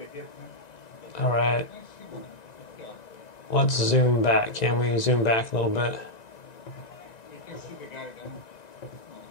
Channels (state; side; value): late; right; 1.9 ms